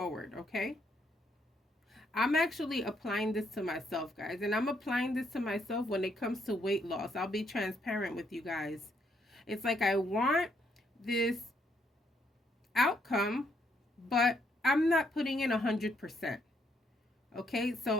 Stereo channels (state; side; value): normal; both; correlation 0.73